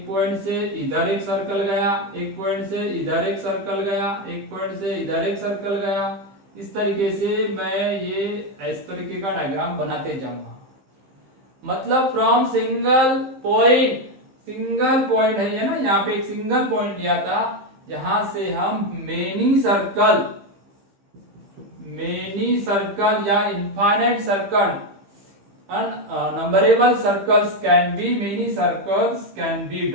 पॉइंट से इधर एक सर्कल गया, एक पॉइंट से इधर एक सर्कल गया, एक पॉइंट से इधर एक सर्कल गया। इस तरीके से मैं ये इस तरीके का डायग्राम बनाते जाऊंगा। मतलब फ्रॉम सिंगल पॉइंट है ये ना, यहाँ पे एक सिंगल पॉइंट लिया था, यहां से हम मेनी सर्कल या infinite circle, numberable circles can be, many circles can be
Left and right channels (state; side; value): late; left; 15 ms